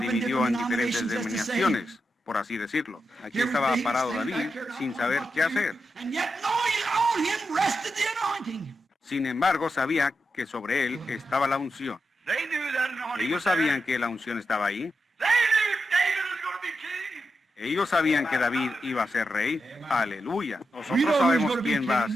en diferentes denominaciones, por así decirlo. Aquí estaba parado David sin saber qué hacer. Sin embargo, sabía que sobre él estaba la unción. Ellos sabían que la unción estaba ahí. Ellos sabían que David iba a ser rey. Aleluya. Nosotros sabemos quién va a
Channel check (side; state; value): both; normal; correlation 0.87